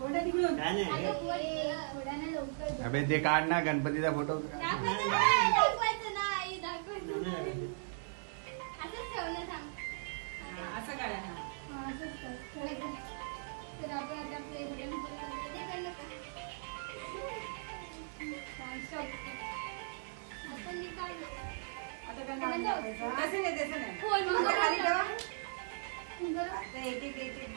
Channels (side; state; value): left; silent; digital silence